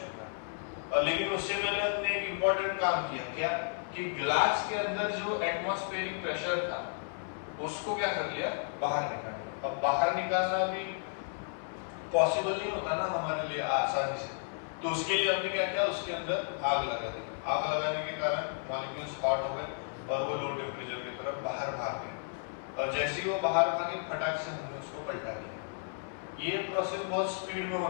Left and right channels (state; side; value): silent; right; 55 dB below the other